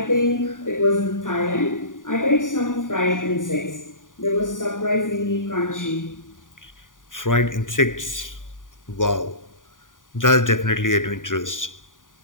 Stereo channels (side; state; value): right; late; 0.88 ms